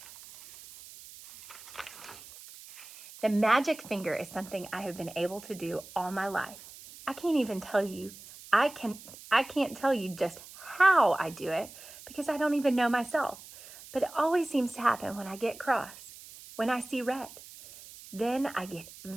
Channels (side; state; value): right; noise; hiss, 17 dB below the sound